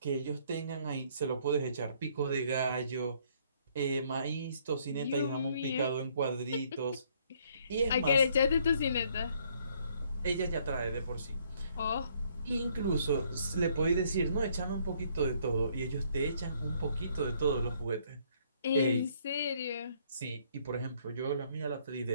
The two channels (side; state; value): both; inverted; correlation -0.65